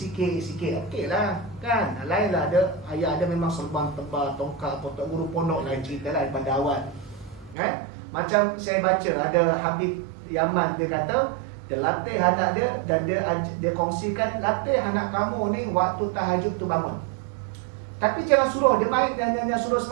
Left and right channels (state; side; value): drops out; left; at 7.6 s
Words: okey lah kan. Lain lah ada, ayah ada memang serban tebal, tongkat, tok guru pondok, lain cerita lah daripada awal kan. Macam saya baca ada Habib Yaman, dia kata dia latih anak dia, dan dia kongsikan, latih anak kamu ni waktu tahajud tu bangun, tapi jangan suruh dia main dan jangan suruh